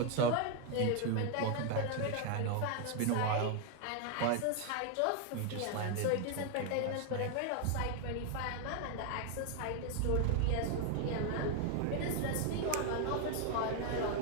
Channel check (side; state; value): both; different; correlation 0.01